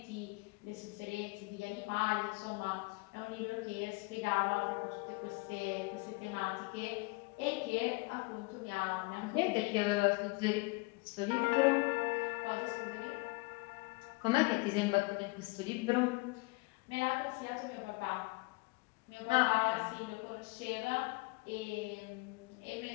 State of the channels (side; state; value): right; quieter; 26.5 dB